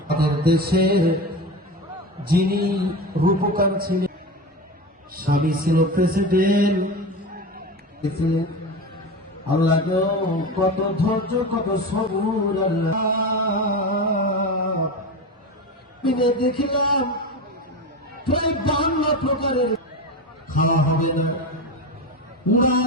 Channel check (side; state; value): both; normal; correlation 0.23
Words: আমাদের দেশের যিনি রূপকার ছিলেন, স্বামী ছিল প্রেসিডেন্ট, আল্লাহ কত ধৈর্য কত সবুর আল্লাহ দেখিলাম প্রায় 52 প্রকারের খাওয়া হবে না, উড়া